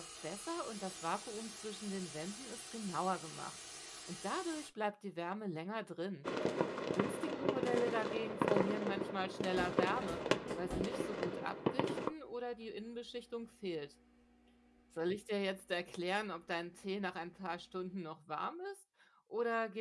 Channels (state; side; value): identical; both; correlation 1.00